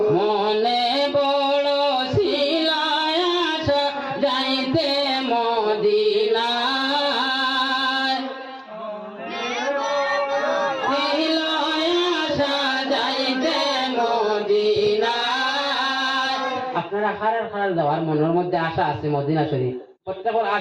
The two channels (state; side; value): identical; both; correlation 1.00